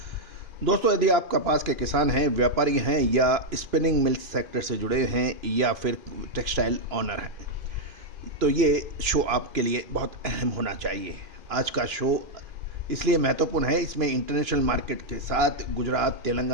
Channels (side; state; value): left; late; 2.9 ms